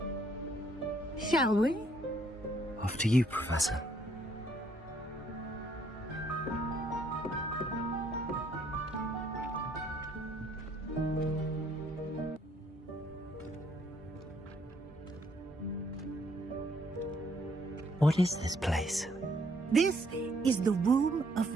Shall we? After you, Professor. What is this place? This is the Room of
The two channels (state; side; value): normal; both; correlation 0.68